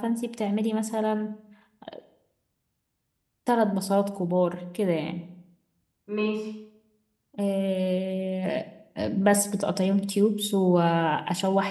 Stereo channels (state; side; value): identical; both; correlation 1.00